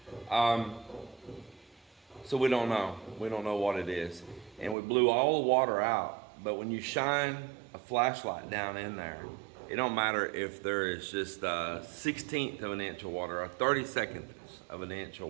So we don't know what it is, and we blew all the water out. But when you shine a flashlight down in there, it don't matter if there is just a 1/16 of an inch of water, or 32nd of an inch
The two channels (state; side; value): drops out; left; at 4.8 s